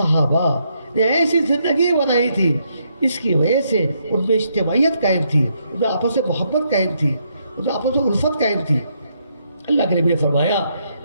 نے ایسی زندگی بنائی تھی, اس کی وجہ سے ان میں اجتماعیت قائم تھی, ان میں آپس میں محبت قائم تھی, ان میں آپس میں الفت قائم تھی. اللہ کے نبی نے فرمایا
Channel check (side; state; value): both; inverted; correlation -0.76